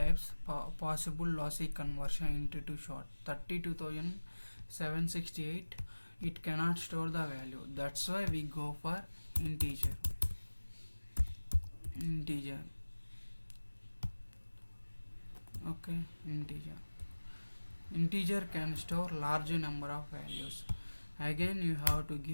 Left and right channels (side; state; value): both; inverted; correlation -1.00